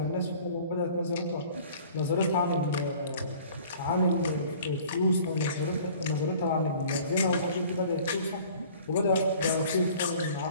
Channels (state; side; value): inverted; both; correlation -0.49